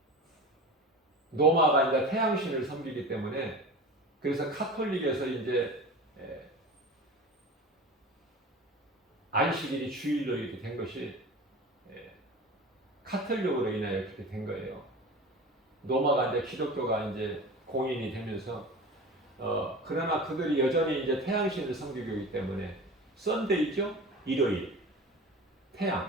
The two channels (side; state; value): both; normal; correlation 0.34